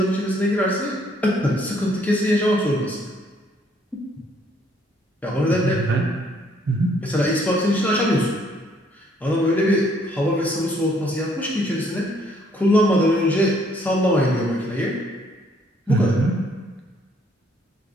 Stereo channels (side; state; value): both; normal; correlation 0.66